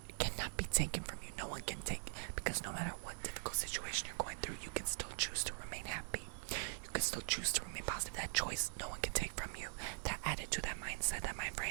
cannot be taken from you. No one can take, because no matter what difficult situation you're going through, you can still choose to remain happy. You can still choose to remain positive. That choice, no one can take from you. That attitude, that mindset, that mind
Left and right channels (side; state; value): left; silent; digital silence